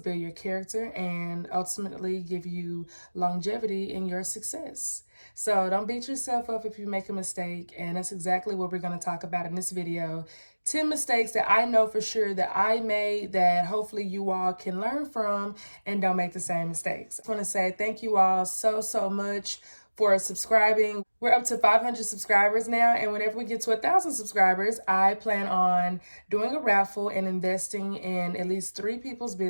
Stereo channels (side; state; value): both; inverted; correlation -1.00